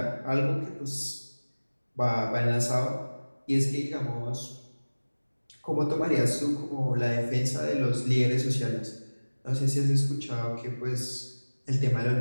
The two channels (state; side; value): inverted; both; correlation -1.00